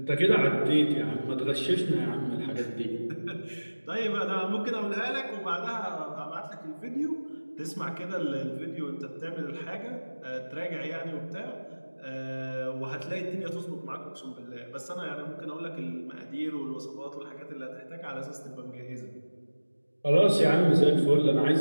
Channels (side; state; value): both; inverted; correlation -1.00